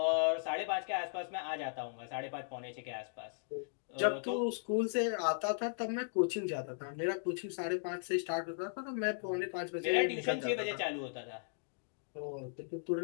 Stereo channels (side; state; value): right; silent; digital silence